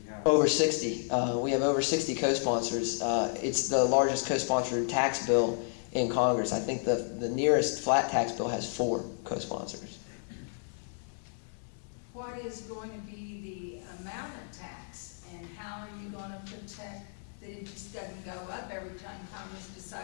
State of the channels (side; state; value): right; silent; 57 dB below the other